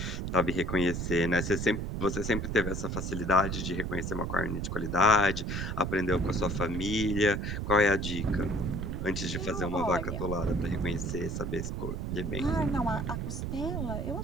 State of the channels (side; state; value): right; noise; rumble, 3 dB below the sound